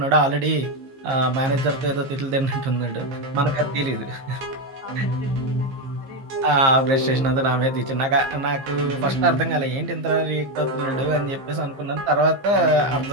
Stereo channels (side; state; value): left; late; 15 ms